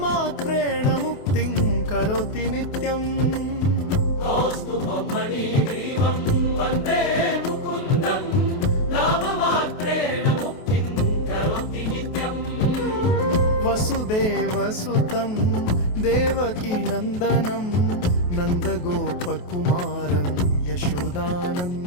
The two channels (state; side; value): late; right; 28 ms